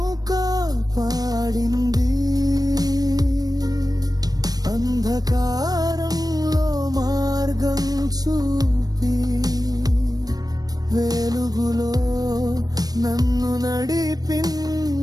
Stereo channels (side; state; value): left; late; 0.19 ms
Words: కాపాడింది. అంధకారంలో మార్గం చూపి వెలుగులో నన్ను